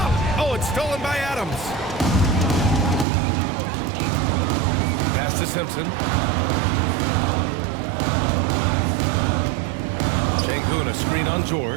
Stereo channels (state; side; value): drops out; left; at 3.1 s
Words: Oh, it's stolen by Adams. Pass to Simpson. Şengün, a screen on